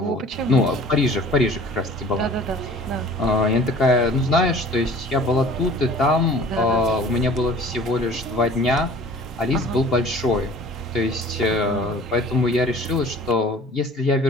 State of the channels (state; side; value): normal; both; correlation 0.47